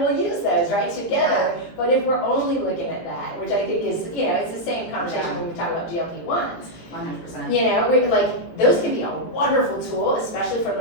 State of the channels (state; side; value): late; right; 18 ms